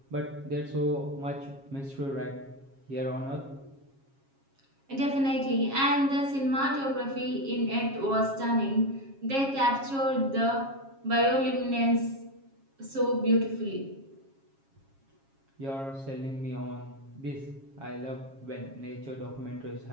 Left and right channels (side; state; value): left; late; 7.4 ms